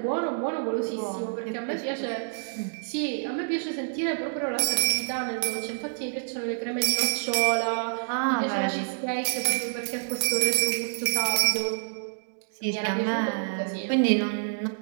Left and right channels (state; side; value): silent; left; digital silence